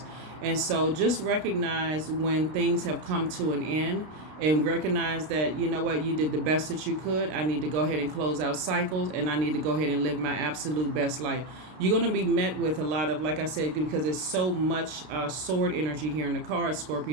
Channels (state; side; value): late; left; 32 ms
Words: And so just recognize when things have come to an end, and recognize that, you know what, you did the best that you could. I need to go ahead and close out cycles, and I need to go ahead and live my absolute best life. You're going to be met with a lot of, like I said, because there's so much sword energy here in the card,